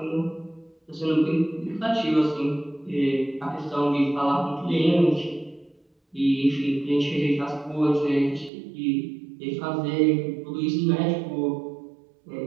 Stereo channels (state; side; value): drops out; left; at 8.5 s